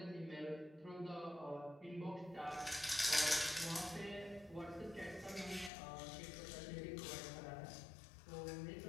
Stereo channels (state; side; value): drops out; right; at 5.7 s